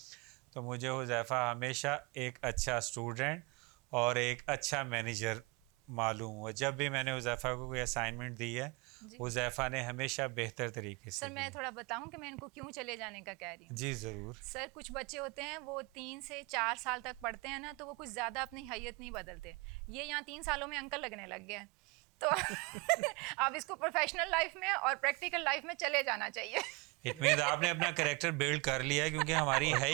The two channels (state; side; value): quieter; left; 27.6 dB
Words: تو مجھے حذیفہ ہمیشہ ایک اچھا اسٹوڈنٹ اور ایک اچھا مینیجر معلوم ہوا. جب بھی میں نے حذیفہ کو کوئی اسائنمنٹ دی ہے حذیفہ نے ہمیشہ بہتر طریقے سے. سر میں تھوڑا بتاؤں کہ میں ان کو کیوں چلے جانے کا کہہ رہی ہوں. جی ضرور. سر کچھ بچے ہوتے ہیں وہ 3 سے 4 سال تک پڑھتے ہیں نا, تو وہ کچھ زیادہ اپنی حیت نہیں بدلتے. یہ یہاں 3 سالوں میں انکل لگنے لگ گیا, تو اب اس کو پروفیشنل لائف میں اور پریکٹیکل لائف میں چلے جانا چاہیے. اٹ مینز آپ نے اپنا کریکٹر بلڈ کر لیا ہے, کیونکہ ہماری ہے